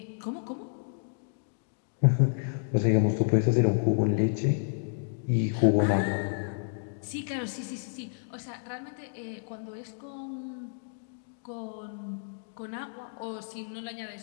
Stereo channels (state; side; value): silent; right; digital silence